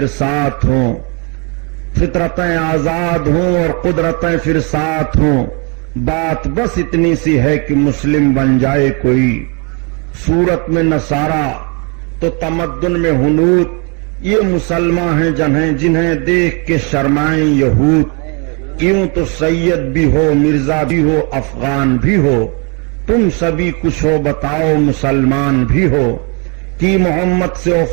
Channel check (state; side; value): quieter; left; 33.6 dB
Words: ساتھ ہوں، فطرتیں آزاد ہوں اور قدرتیں پھر ساتھ ہوں، بات بس اتنی سی ہے کہ مسلم بن جائے کوئی۔ صورت میں نصارہ تو تمدن میں ہنود، یہ مسلمان ہیں جنہیں دیکھ کے شرمائیں یہود۔ کیوں تو سید بھی ہو، مرزا بھی ہو، افغان بھی ہو، تم سبھی کچھ ہو بتاؤ مسلمان بھی ہو۔ کی محمد سے